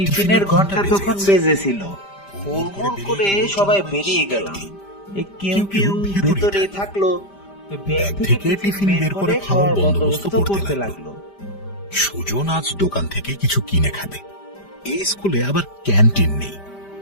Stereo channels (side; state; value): right; late; 5.0 ms